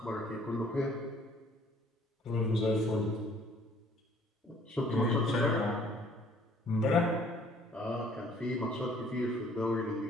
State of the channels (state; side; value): normal; both; correlation 0.58